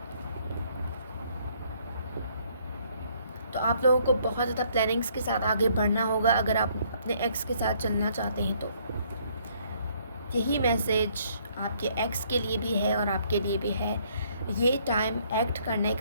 तो आप लोगों को बहुत ज़्यादा प्लानिंग्स के साथ आगे बढ़ना होगा अगर आप अपने एक्स के साथ चलना चाहते हैं तो। यही मैसेज आपके एक्स के लिए भी है और आपके लिए भी है। ये टाइम एक्ट करने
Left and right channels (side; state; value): both; inverted; correlation -0.65